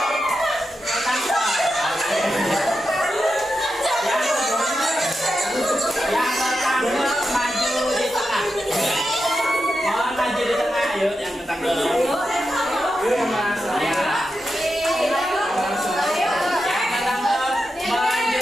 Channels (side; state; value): both; normal; correlation 0.88